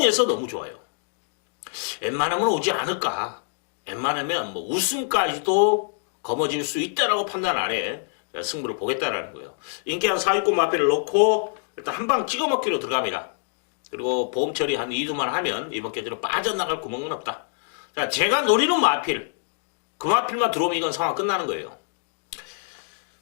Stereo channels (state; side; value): silent; right; digital silence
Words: 너무 좋아요. 웬만하면 오지 않을까. 웬만하면 우승까지도 거머쥘 수 있다라고 판단 아래 승부를 보겠다라는 거예요. 인기 한 4위권 마필을 놓고 일단 한 방 찍어 먹기로 들어갑니다. 그리고 보험 처리 한 2두만 하면 이번 경주는 빠져나갈 구멍은 없다. 자, 제가 노리는 마필, 그 마필만 들어오면 이건 상황 끝나는 거예요.